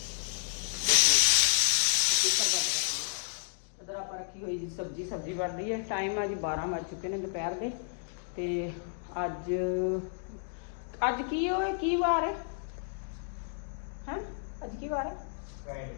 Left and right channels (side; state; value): right; silent; digital silence